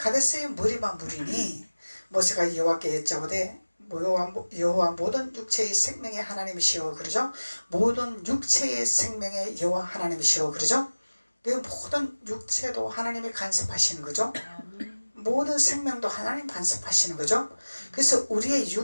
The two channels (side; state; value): both; inverted; correlation -1.00